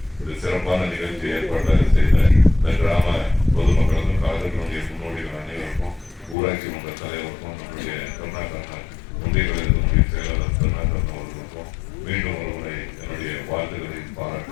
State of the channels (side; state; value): right; drops out; at 6.4 s